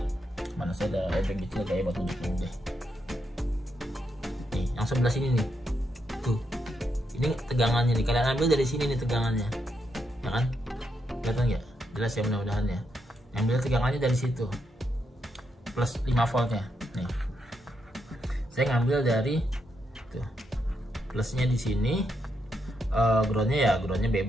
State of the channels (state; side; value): normal; both; correlation 0.81